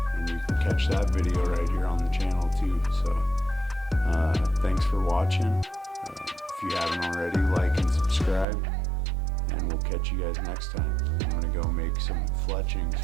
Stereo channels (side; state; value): left; drops out; at 8.5 s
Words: And you can catch that video right here on the channel too. So thanks for watching. If you haven't already, like and subscribe. And we'll catch you guys next time. I'm going to go make some fletchings